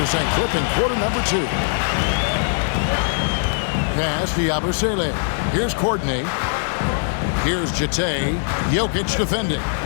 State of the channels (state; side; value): silent; right; digital silence